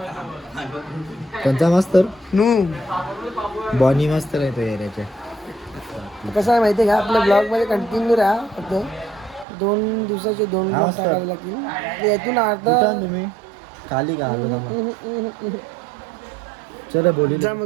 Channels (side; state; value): left; drops out; at 9.5 s